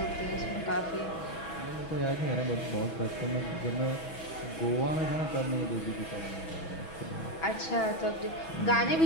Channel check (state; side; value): late; right; 6.1 ms